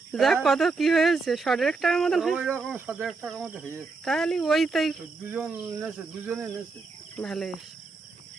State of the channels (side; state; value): left; quieter; 4.1 dB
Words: যাক, কত কি হয়েছে, 100 টাকার মতন হয়। ওই রকম 7 টাকার মধ্যে হয়েছে। তাহলে ওই তাই দুজনে নেছে। ভালো।